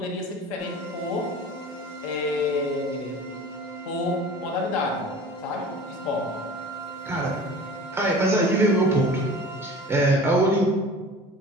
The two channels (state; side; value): normal; both; correlation 0.40